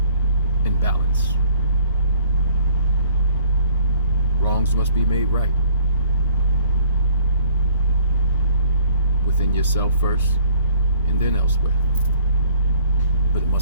in balance. Wrongs must be made right. Within yourself first, and then elsewhere. But it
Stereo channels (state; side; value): inverted; both; correlation -0.56